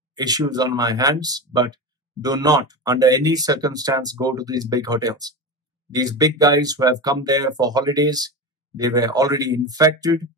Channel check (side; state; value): both; normal; correlation 0.23